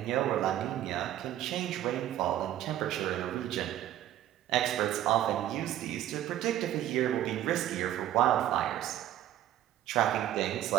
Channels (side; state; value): left; quieter; 12.5 dB